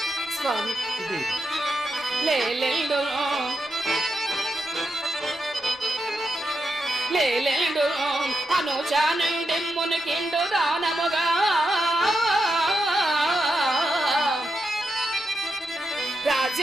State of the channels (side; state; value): both; normal; correlation 0.85